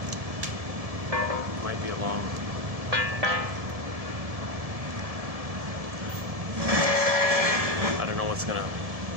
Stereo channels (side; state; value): left; late; 1.7 ms